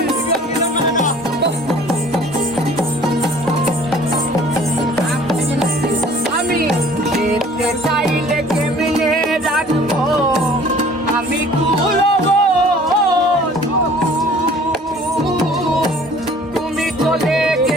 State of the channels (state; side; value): normal; both; correlation 0.51